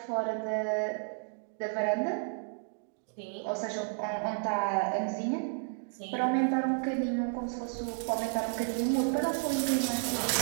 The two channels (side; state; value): left; silent; 56 dB below the other